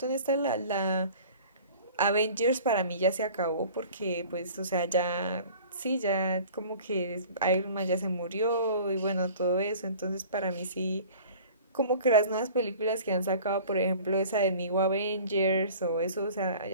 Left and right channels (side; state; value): both; inverted; correlation -0.45